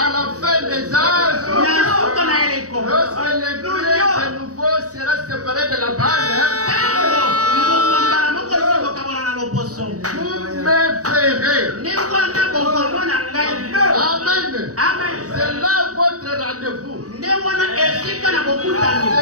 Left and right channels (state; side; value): late; left; 0.66 ms